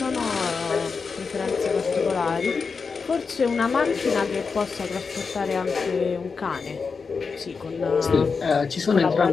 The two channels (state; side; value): quieter; right; 5.1 dB